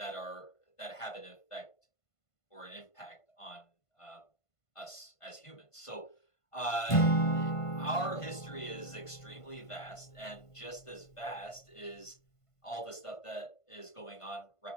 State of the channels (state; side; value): late; right; 1.5 ms